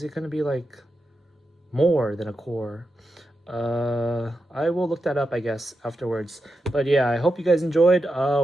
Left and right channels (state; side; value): normal; both; correlation 0.88